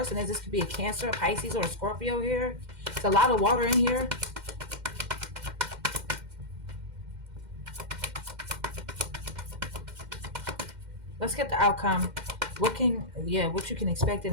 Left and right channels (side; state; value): left; late; 2.1 ms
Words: is. This could be a Cancer, a Pisces, or a Scorpio here. It's a lot of water in here. Let's get the outcome. What you can expect in